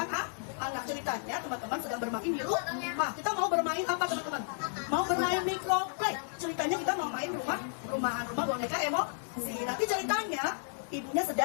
anak. Ceritanya teman-teman sedang bermain di rumah. Kita mau bermain apa teman-teman? Mau bermain microplay. Ceritanya kita mau main rumah rumah boneka emosi. Nanti ceritanya ibunya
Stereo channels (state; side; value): silent; right; digital silence